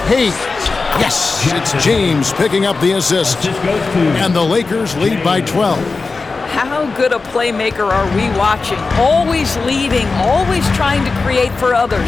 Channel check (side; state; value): right; quieter; 4.1 dB